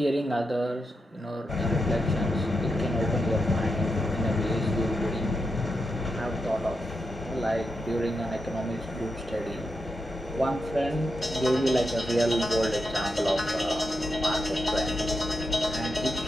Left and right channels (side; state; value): both; normal; correlation 0.86